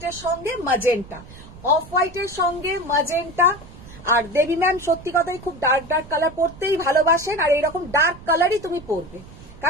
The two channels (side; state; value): right; noise; rumble, 18 dB below the sound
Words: সঙ্গে ম্যাজেন্টা, অফ হোয়াইটের সঙ্গে ম্যাজেন্টা। আর দেবী ম্যাম সত্যি কথাই খুব ডার্ক ডার্ক কালার পরতেই ভালোবাসেন, আর এরকম ডার্ক কালারই তুমি পরবে,